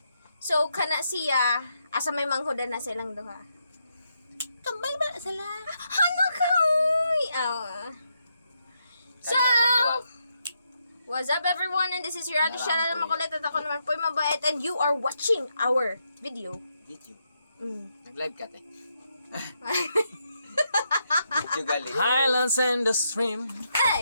So, kana siya, asa may manghudan na silang duha. Kambal ba sila? Ano ka? So, what's up everyone? And this is your other channel na makulit at ako naman po yung mabait. And you are watching our video. Video. Mm. Nag-live ka, te. Video gali. Highlands and the stream.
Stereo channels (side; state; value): both; inverted; correlation -0.80